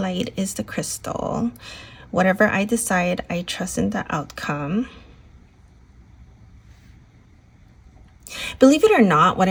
is the crystal. Whatever I decide, I trust in the outcome. Believe it or not, what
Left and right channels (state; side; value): identical; both; correlation 1.00